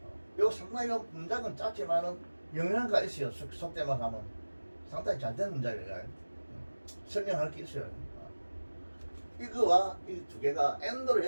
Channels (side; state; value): both; inverted; correlation -1.00